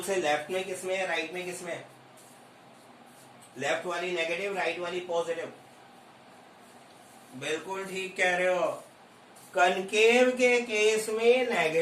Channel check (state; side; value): identical; both; correlation 1.00